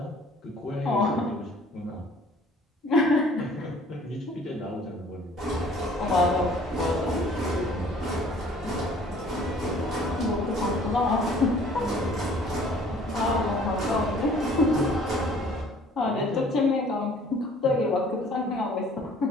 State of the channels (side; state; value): both; normal; correlation 0.54